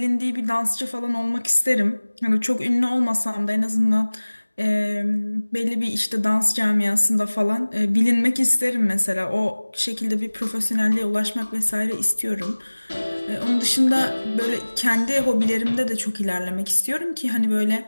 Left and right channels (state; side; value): inverted; both; correlation -1.00